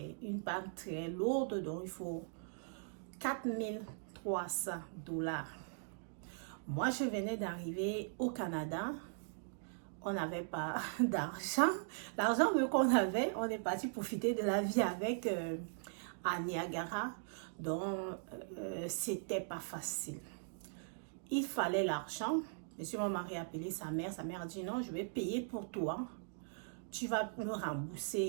une panne très lourde. Donc, il faut $4,300. Moi, je venais d'arriver au Canada. On n'avait pas d'argent. L'argent qu'on avait, on est parti profiter de la vie avec à Niagara. Donc, c'était pas facile. Il fallait l'argent. Monsieur, mon mari a appelé sa mère. Sa mère a dit non, je vais payer pour toi. Tu vas me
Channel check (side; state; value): left; silent; digital silence